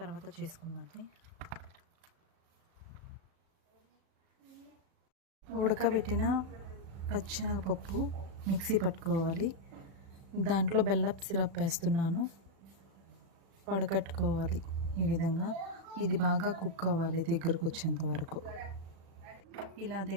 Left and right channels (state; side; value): late; left; 36 ms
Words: చేసుకుందండి. ఉడకబెట్టిన పచ్చెనగపప్పు మిక్సీ పట్టుకోవాలి. దాంట్లో బెల్లపు సిరప్ వేస్తున్నాను. వడకట్టుకోవాలి. ఈ విధంగా ఇది బాగా కుక్ అవ్వాలి దగ్గరకు వచ్చేంత వరకు. ఇలా